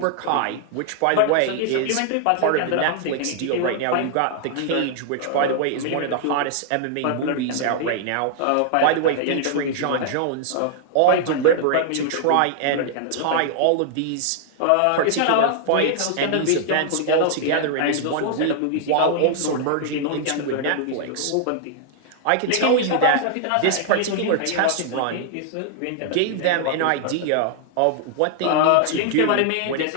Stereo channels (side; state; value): both; different; correlation -0.01